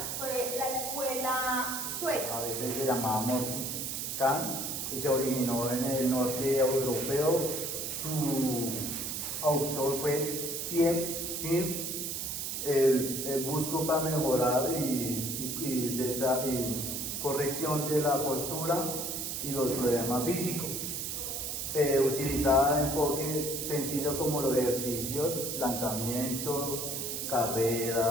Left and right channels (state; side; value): noise; right; hiss, 3 dB below the sound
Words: fue la escuela sueca. a veces se llamaba Morgan, y se originó en el norte europeo. Su autor fue Pierre Mir. El busco para mejorar y corrección de la postura y los problemas físicos. Utilizaba enfoque sencillo como los ejercicios, lanzamiento,